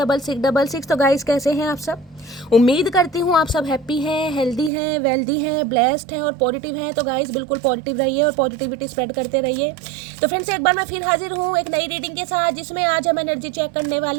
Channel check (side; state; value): left; drops out; at 4.7 s